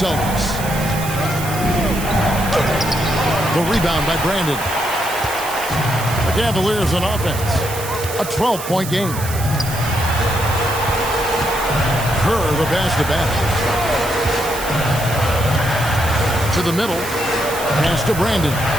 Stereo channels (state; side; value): noise; right; hiss, 10 dB below the sound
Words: The rebound by Brandon. The Cavaliers on offense. A 12-point game. Kerr the pass to Battle. To the middle. Pass to Brandon.